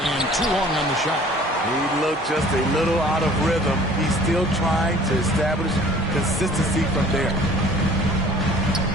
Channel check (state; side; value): normal; both; correlation 0.50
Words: too long on the shot. He looked just a little out of rhythm. He's still trying to establish consistency from there.